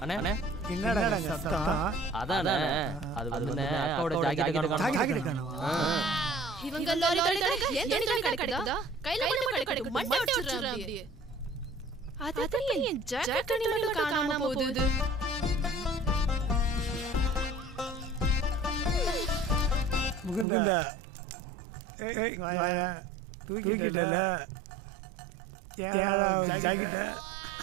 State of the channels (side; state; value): left; drops out; at 20.5 s